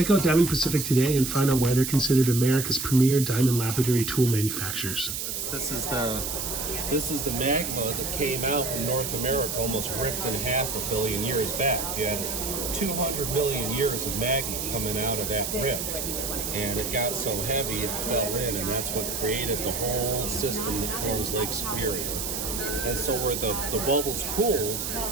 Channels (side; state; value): right; noise; hiss, 3 dB below the sound